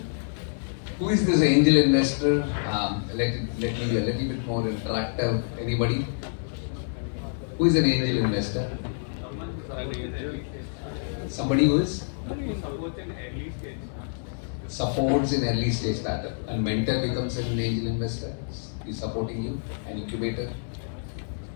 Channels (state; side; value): silent; right; digital silence